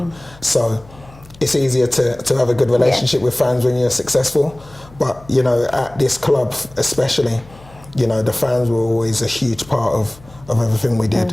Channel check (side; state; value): left; noise; hum, 23 dB below the sound